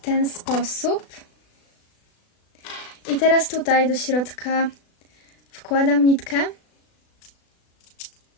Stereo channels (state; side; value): late; right; 36 ms